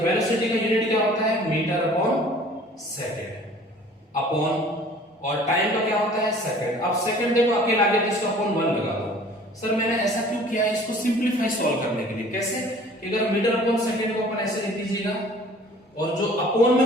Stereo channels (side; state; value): both; normal; correlation 0.50